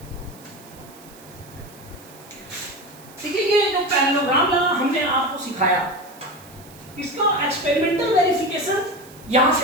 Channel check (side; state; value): right; noise; hiss, 22 dB below the sound